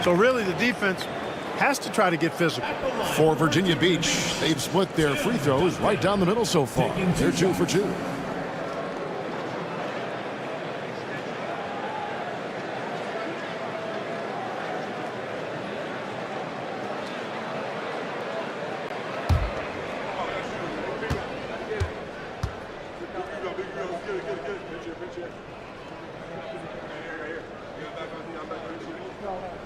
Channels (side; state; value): both; identical; correlation 1.00